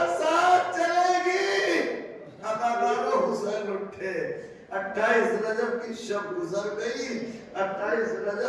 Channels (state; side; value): identical; both; correlation 1.00